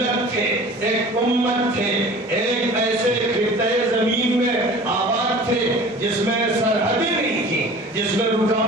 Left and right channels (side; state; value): both; normal; correlation 0.42